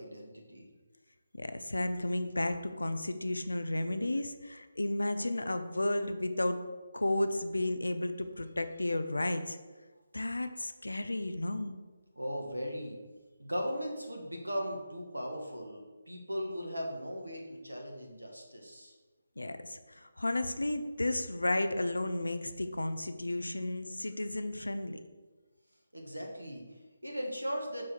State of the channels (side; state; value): both; inverted; correlation -0.96